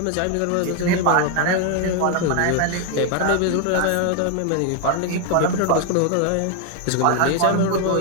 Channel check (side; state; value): both; different; correlation 0.01